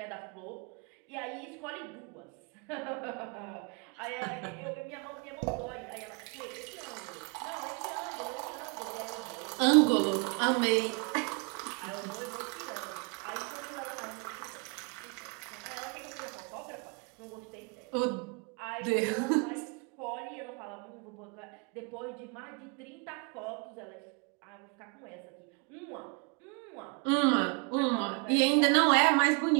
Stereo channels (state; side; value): quieter; left; 32.4 dB